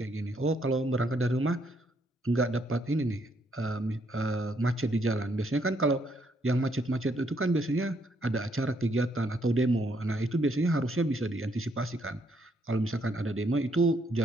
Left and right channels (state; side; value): normal; both; correlation 0.72